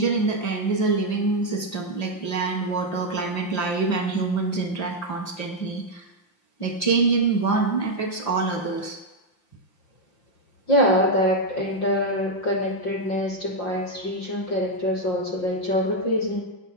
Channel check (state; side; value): late; right; 5.8 ms